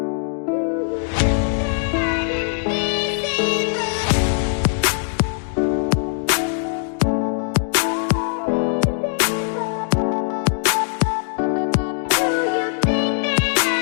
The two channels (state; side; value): silent; right; digital silence